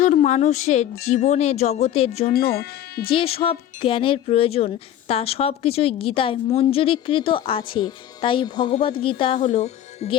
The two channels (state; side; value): quieter; right; 11.4 dB